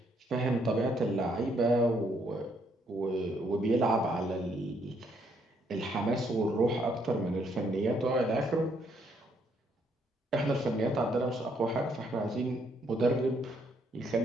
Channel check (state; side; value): normal; both; correlation 0.71